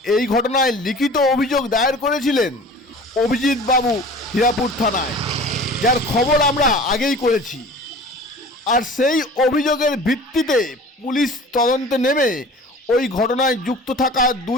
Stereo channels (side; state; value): both; normal; correlation 0.42